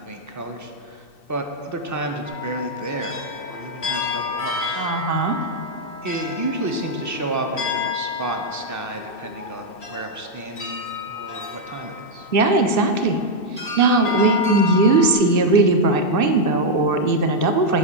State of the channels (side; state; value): right; late; 2.6 ms